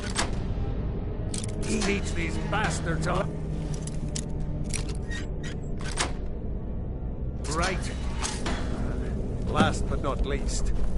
Teach these bastards up. Right. Last but not least,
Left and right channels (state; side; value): identical; both; correlation 1.00